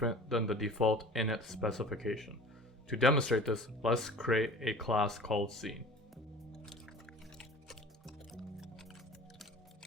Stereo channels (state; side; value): normal; both; correlation 0.42